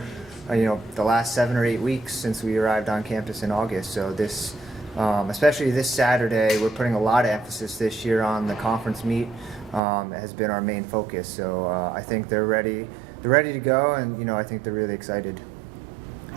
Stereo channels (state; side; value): drops out; left; at 9.8 s